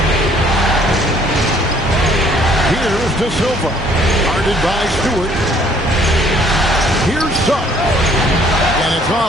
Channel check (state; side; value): normal; both; correlation 0.60